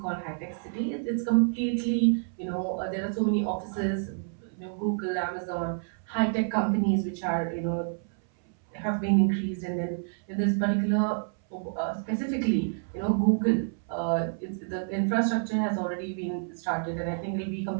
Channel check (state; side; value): silent; left; 59 dB below the other